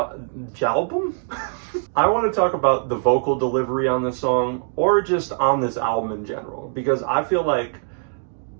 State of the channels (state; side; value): silent; left; digital silence